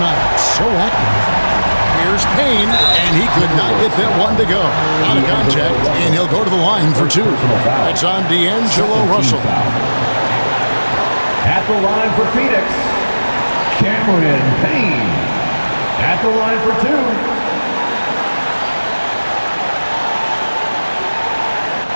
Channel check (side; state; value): both; inverted; correlation -1.00